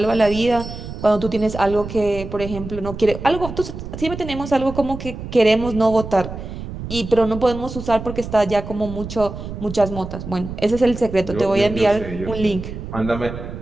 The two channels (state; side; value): noise; right; rumble, 9 dB below the sound